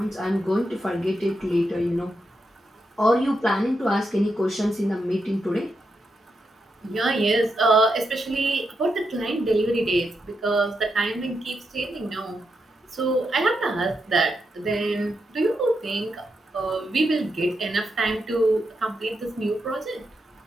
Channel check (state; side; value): normal; both; correlation 0.84